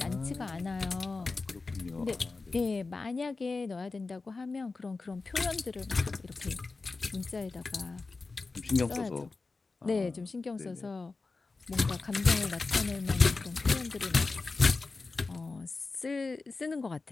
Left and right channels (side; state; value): right; quieter; 3.9 dB